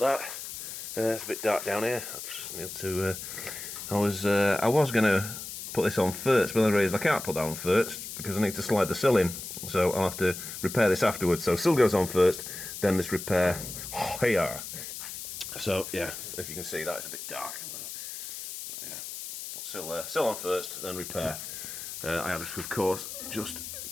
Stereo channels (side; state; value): left; noise; hiss, 9 dB below the sound